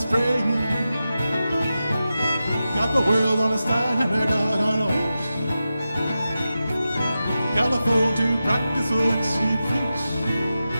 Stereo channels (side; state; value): both; inverted; correlation -0.92